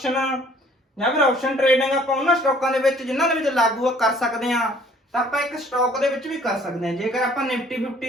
ਜਾਂ ਫਿਰ ਆਪਸ਼ਨ ਟ੍ਰੇਡਿੰਗ ਆਪਾਂ ਉਹਨਾਂ ਸਟਾਕਾਂ ਦੇ ਵਿੱਚ ਜਿਨ੍ਹਾਂ ਦੇ ਵਿੱਚ ਲਾਗੂ ਕਰ ਸਕਦੇ ਆ, ਤਾਂ ਆਪਾਂ ਇੱਕ ਸਟਾਕ ਦੇ ਵਿੱਚ ਵੀ ਕਰ ਸਕਦੇ ਆ। ਜੇਕਰ ਆਪਾਂ ਨਿਫਟੀ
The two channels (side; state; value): both; normal; correlation 0.57